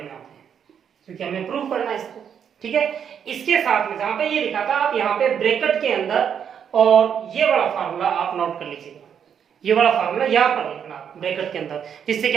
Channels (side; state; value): left; quieter; 8.0 dB